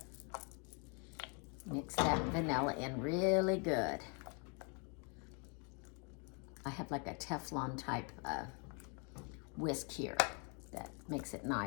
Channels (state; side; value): quieter; right; 35.7 dB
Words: Mix that vanilla in really good. I have like a Teflon type whisk here that makes it